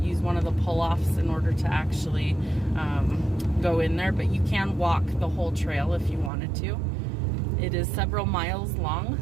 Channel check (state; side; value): drops out; left; at 6.3 s